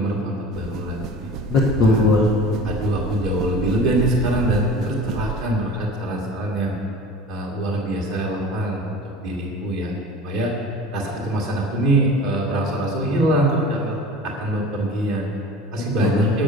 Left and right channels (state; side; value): normal; both; correlation 0.40